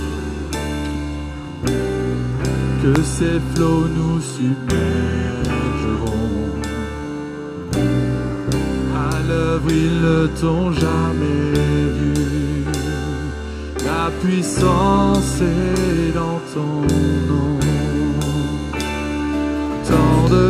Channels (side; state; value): both; identical; correlation 1.00